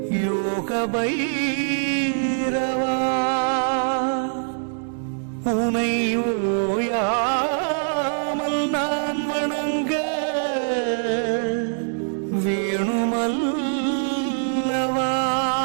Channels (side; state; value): left; silent; 63 dB below the other